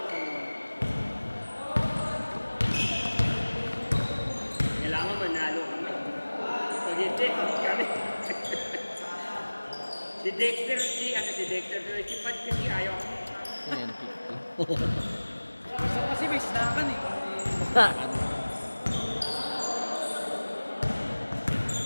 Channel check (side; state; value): both; inverted; correlation -1.00